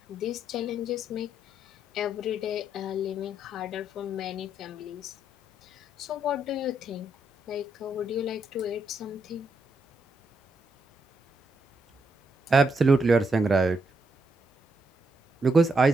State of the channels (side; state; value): both; normal; correlation 0.79